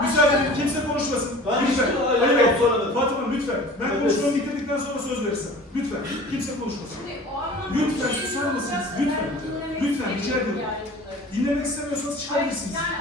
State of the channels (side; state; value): both; normal; correlation 0.43